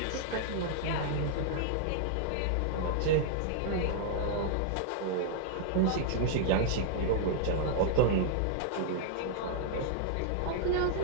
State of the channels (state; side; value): different; both; correlation -0.01